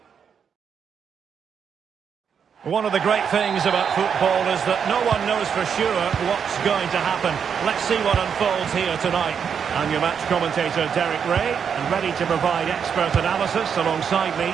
One of the great things about football is that no one knows for sure what's going to happen. Let's see what unfolds here tonight. I'm your match commentator, Derek Ray, and ready to provide expert analysis alongside me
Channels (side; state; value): left; quieter; 7.2 dB